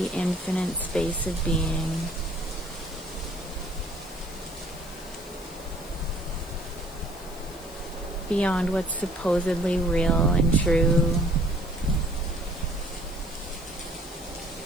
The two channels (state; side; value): noise; left; hiss, 20 dB below the sound